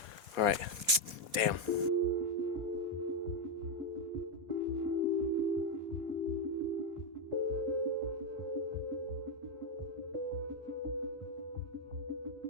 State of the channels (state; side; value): late; left; 4.2 ms